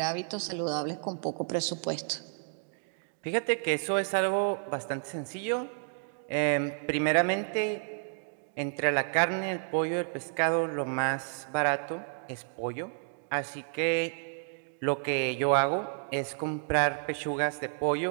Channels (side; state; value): left; silent; digital silence